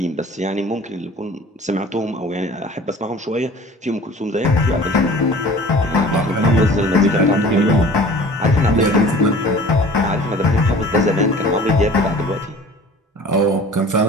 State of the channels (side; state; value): both; normal; correlation 0.45